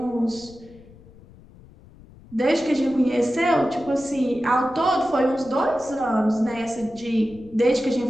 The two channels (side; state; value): left; noise; rumble, 23 dB below the sound